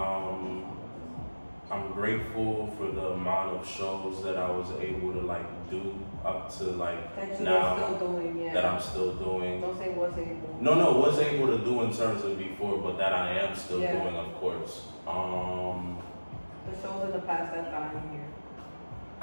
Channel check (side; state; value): both; inverted; correlation -1.00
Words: I'm grateful for the amount of shows that I was able to like do up to like that you now are still doing, yeah. that I'm still doing. Don't say was able. No, was able to do in terms of before, but that I am still Yeah. doing, of course. The shows in the past that I'm here.